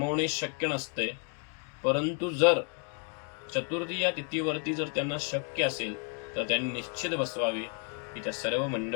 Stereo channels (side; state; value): right; quieter; 38.9 dB